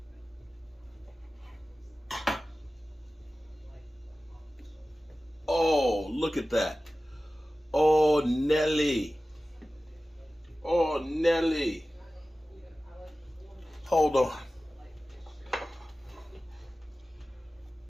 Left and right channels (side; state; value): both; normal; correlation 0.96